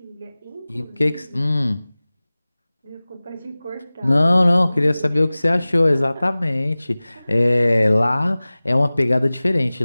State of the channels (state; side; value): inverted; both; correlation -0.99